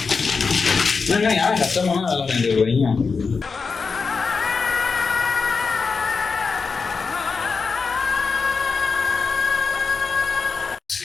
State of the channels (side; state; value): right; quieter; 4.9 dB